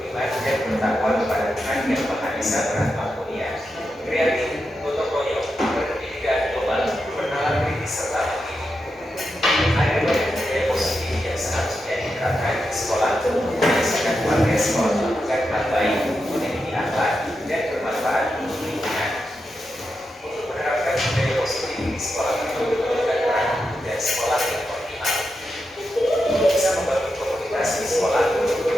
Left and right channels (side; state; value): both; normal; correlation 0.87